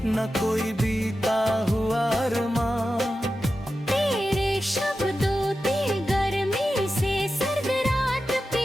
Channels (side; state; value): both; normal; correlation 0.92